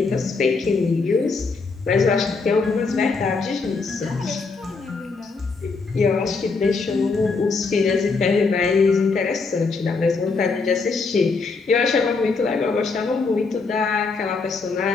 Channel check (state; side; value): quieter; right; 4.3 dB